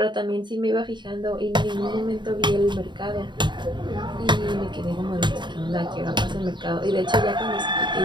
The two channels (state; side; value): late; left; 0.22 ms